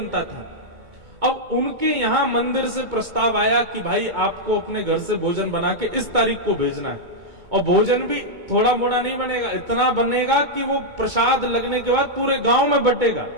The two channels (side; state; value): left; late; 2.2 ms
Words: था। अब उनके यहां मंदिर से प्रस्ताव आया कि भाई आपको अपने घर से भोजन बना के इस तारीख को भेजना है, और भोजन भी थोड़ा मोड़ा नहीं बनेगा, इतना बनेगा कि वो प्रसाद लगने के बाद पूरे गांव में बटेगा।